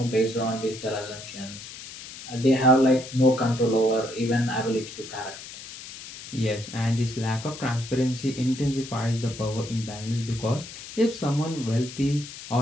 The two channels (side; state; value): left; noise; hiss, 13 dB below the sound